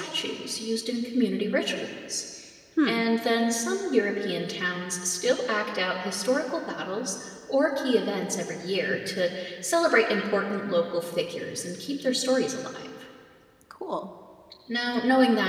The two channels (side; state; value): both; identical; correlation 1.00